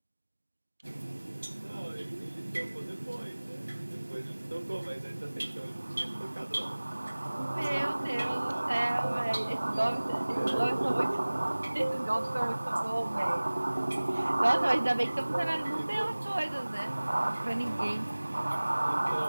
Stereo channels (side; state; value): both; inverted; correlation -1.00